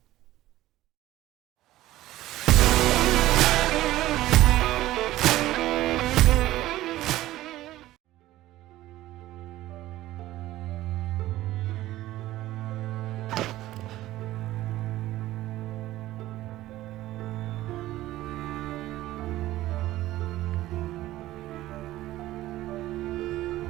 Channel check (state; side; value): quieter; left; 15.7 dB